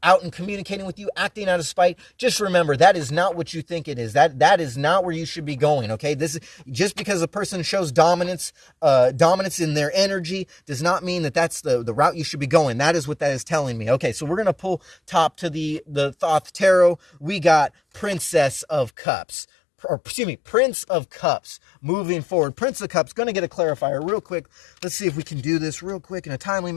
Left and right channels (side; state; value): right; drops out; at 18.9 s